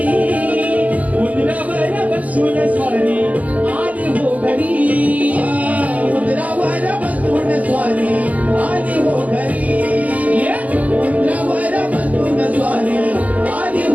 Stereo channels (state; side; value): late; left; 0.076 ms